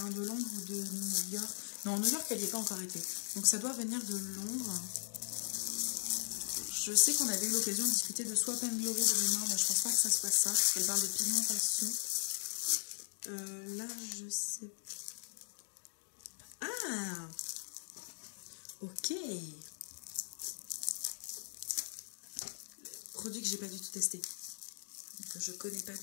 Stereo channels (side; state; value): right; silent; digital silence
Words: de Londres ou de New York. Non, New York elle n'y est pas encore été. Donc ça doit venir de Londres. Je sais qu'on avait eu l'occasion de discuter de Swap and Glory de mémoire, mais je pense pas que ça soit ça, parce qu'elle parle de pigmentation. Là, je sais Ah, ok. Produit que j'ai pas du tout testé, que je connais pas